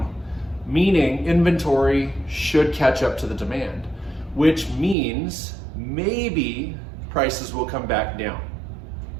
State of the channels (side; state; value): left; drops out; at 5.0 s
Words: meaning inventory should catch up to the demand, which means maybe prices will come back down.